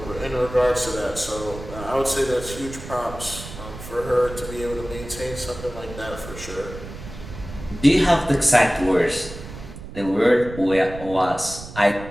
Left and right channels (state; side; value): noise; right; rumble, 13 dB below the sound